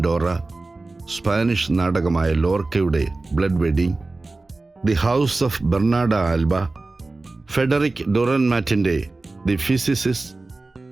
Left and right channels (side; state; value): left; quieter; 3.3 dB